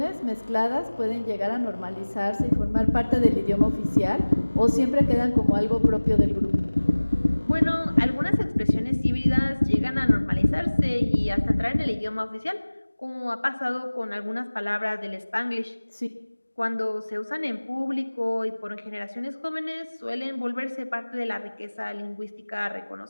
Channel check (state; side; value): inverted; both; correlation -1.00